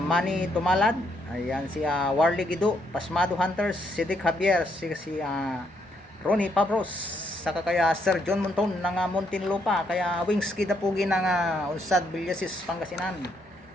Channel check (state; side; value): normal; both; correlation 0.74